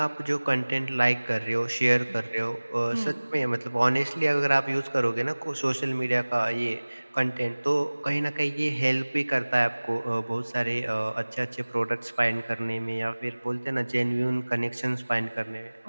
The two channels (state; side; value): inverted; both; correlation -1.00